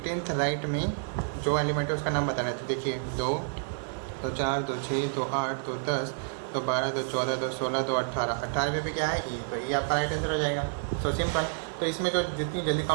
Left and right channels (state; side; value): silent; left; 58 dB below the other